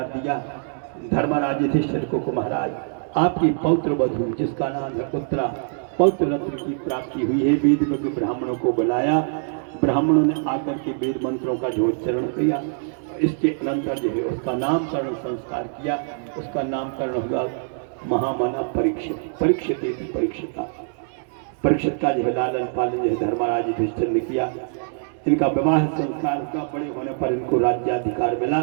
दिया धर्मराज युधिष्ठिर को महाराज आपकी पौत्र वधु जिसका नाम है उत्तरा पौत्र रत्न की प्राप्ति हुई है वेद में ब्राह्मणों को बुलाया ब्राह्मणों ने आकर के वेद मंत्रों का झोचरण किया इसके अनंतर जो है उसका नामकरण संस्कार किया उसका नामकरण हुआ महामना परीक्षित का जो है लालन पालन जो है धर्मराज युधिष्ठिर ने किया इनका विवाह संस्कार हुआ बड़े होने पर इनको राज्याधिकार मिला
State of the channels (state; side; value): silent; left; digital silence